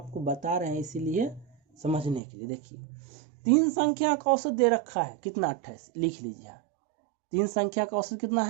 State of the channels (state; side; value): drops out; left; at 2.2 s